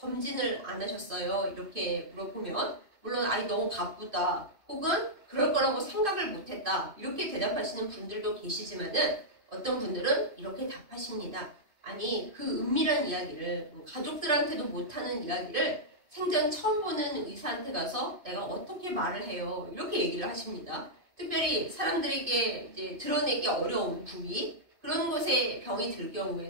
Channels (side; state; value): left; late; 2.5 ms